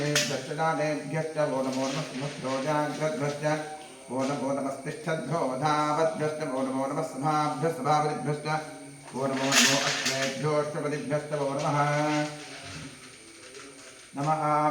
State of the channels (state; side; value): identical; both; correlation 1.00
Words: दानेभ्यश्च वो नमो नमः सुभद्भ्यो जाग्रद्भ्यश्च वो नमो नमस्तिष्ठद्भ्यो धावद्भ्यश्च वो नमो नमः सभाभ्यः सभावद्भ्यश्च वो नमो नमो अश्वेभ्योऽष्टपदिभ्यश्च वो नमः नमः